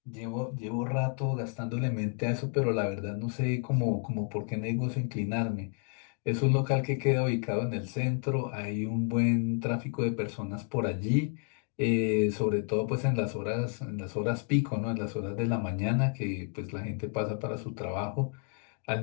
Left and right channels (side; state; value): right; quieter; 39.7 dB